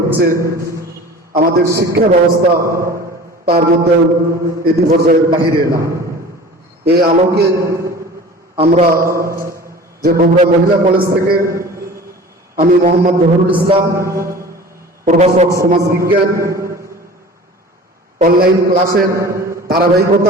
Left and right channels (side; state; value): both; normal; correlation 0.41